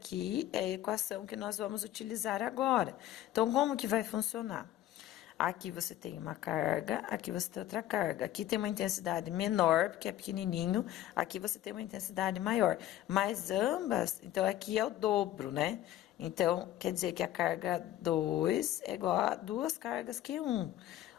é a equação que nós vamos utilizar agora. Então, como que vai funcionar? Aqui você tem uma carga, aqui você tem outra carga. Aqui tem uma intensidade menor, porque é pequenininho. Aqui você tem uma intensidade maior. Mas ambas, então aqui é o dobro, né? Então, quer dizer que a carga 2 é igual a duas cargas Q1.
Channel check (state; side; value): quieter; right; 13.1 dB